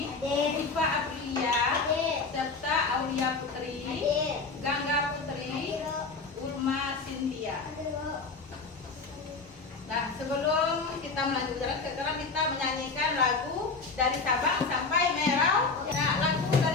Iva Aprilia, serta Aulia Putri, Gangga Putri, Urma Cynthia. Nah, sebelum kita melanjutkan, sekarang kita menyanyikan lagu dari Sabang sampai Merau. Nah, lagu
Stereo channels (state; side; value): quieter; right; 4.2 dB